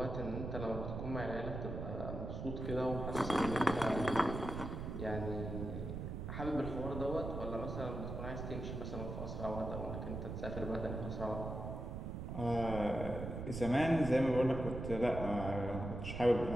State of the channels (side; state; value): right; noise; rumble, 5 dB below the sound